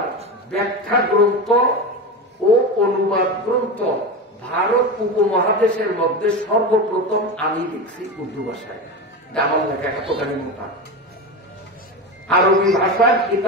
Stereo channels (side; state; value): both; normal; correlation 0.21